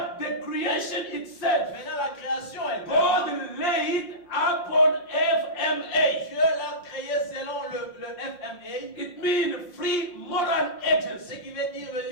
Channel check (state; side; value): late; right; 5.6 ms